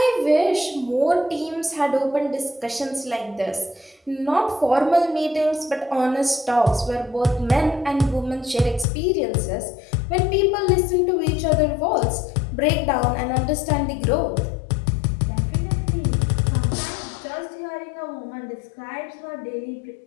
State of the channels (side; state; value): right; drops out; at 8.8 s